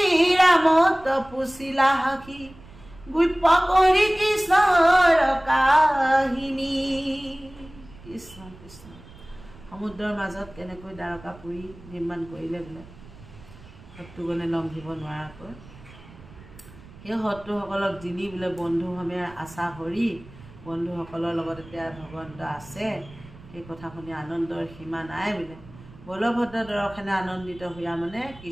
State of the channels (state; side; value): noise; right; rumble, 20 dB below the sound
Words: ৰামত পুচিলা সাখি গুপ্য কৰি কৃষ্ণৰ কাহিনী। কৃষ্ণ কৃষ্ণ সমুদ্ৰৰ মাজত কেনেকৈ দ্বাৰকাপুৰী নিৰ্মাণ কৰিলে বোলে শত্ৰুগণে লংঘিব নোৱাৰাকৈ সেই শত্ৰুসকলক যিনি বোলে বন্ধুসমে আশা হৰি বন্ধুসকলৰ লগত এতিয়া ভগৱন্ত আছে সেই কথা শুনি আনন্দৰ সীমা নাই বোলে। বলভদ্ৰ দৰ্শনে আনন্দিত হোৱা মানে